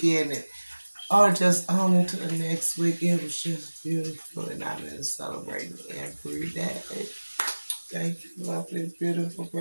And just on into the next week. It was just beautiful, and I've been celebrating every day. Thank you, lovely, beautiful,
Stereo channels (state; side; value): inverted; both; correlation -1.00